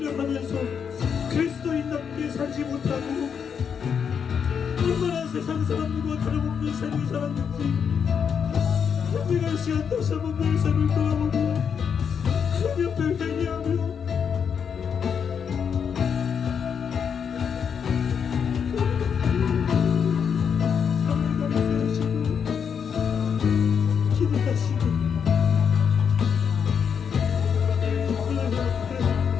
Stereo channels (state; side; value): quieter; right; 7.1 dB